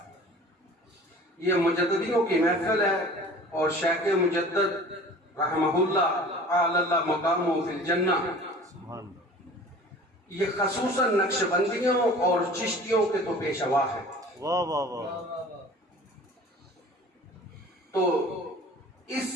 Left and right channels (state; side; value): normal; both; correlation 0.44